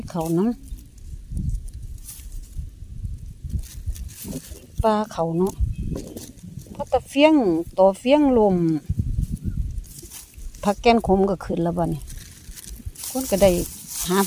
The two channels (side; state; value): both; identical; correlation 1.00